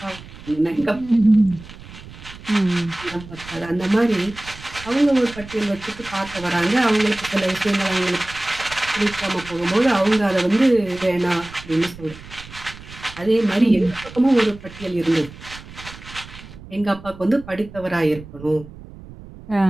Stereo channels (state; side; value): noise; right; rumble, 17 dB below the sound